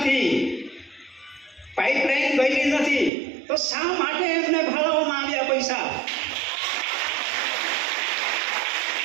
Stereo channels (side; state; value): left; drops out; at 3.1 s